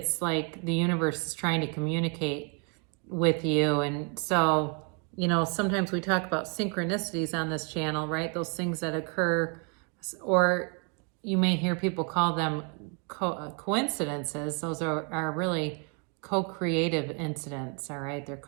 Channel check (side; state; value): left; quieter; 36.7 dB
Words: like the universe is trying to communicate with you. And so, you know, sometimes we talk about synchronicities on this channel, right? Those things that occur, or you may hear people call them coincidences. Those are really co-creative incidents, all right? They're